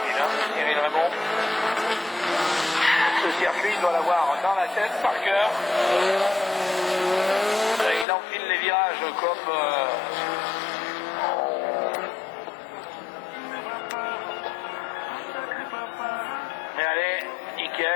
hein, Cyril Raymond. Ce circuit, il doit l'avoir dans la tête, par cœur. Il enfile les virages comme... Mais allez,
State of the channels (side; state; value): right; drops out; at 8.1 s